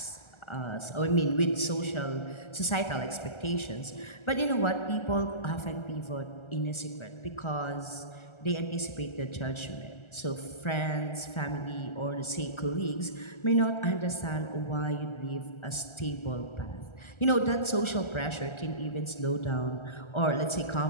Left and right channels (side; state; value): right; late; 1.4 ms